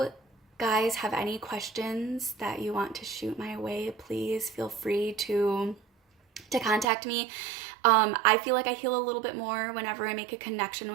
guys have any questions that you want to shoot my way, please feel free to contact me. I feel like I heal a little bit more whenever I make a connection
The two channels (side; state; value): left; drops out; at 6.9 s